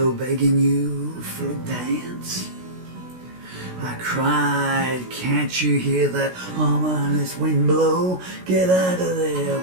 begging you for a dance? I cried, can't you hear that ominous wind blow? Get out of there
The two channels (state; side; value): late; left; 16 ms